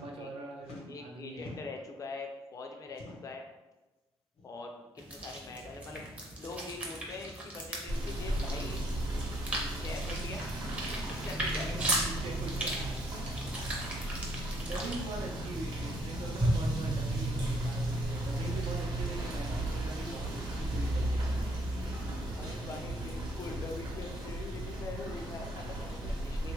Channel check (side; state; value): both; normal; correlation 0.68